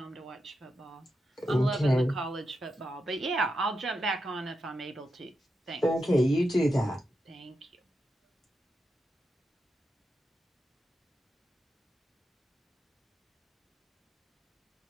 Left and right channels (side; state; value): both; normal; correlation 0.87